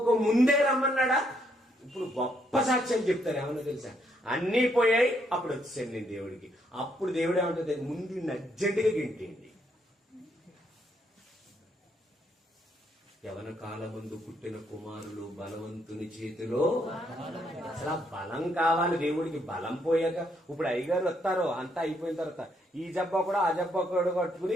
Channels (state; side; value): normal; both; correlation 0.73